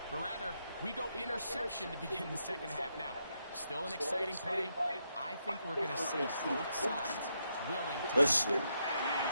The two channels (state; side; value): inverted; both; correlation -0.80